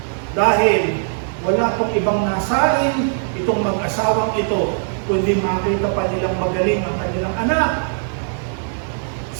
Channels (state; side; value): silent; left; digital silence